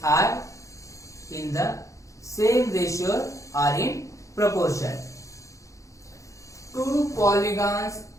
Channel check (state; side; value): late; right; 0.15 ms